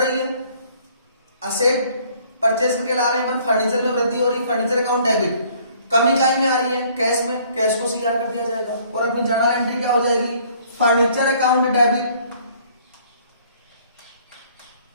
है, असेट परचेज करके ला रहे हैं, पर फर्नीचर में वृद्धि हो रही है, फर्नीचर अकाउंट डेबिट। कमी इकाई में आ रही है कैश में, कैश को सीआर कर दिया जाएगा और अपनी जर्नल एंट्री क्या हो जाएगी, furniture account debit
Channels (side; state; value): both; inverted; correlation -0.59